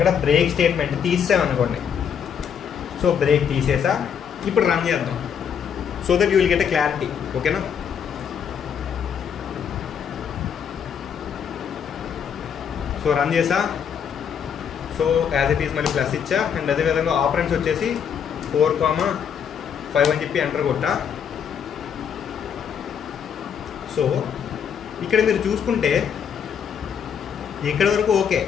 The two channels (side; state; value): right; quieter; 7.7 dB